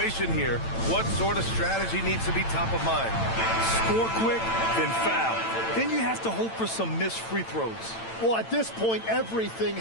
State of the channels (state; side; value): late; right; 8.9 ms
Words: here, what sort of strategy needs to be top of mind? Score quick, then foul. Then you have to hope for some missed free throws. Well, at this point, everything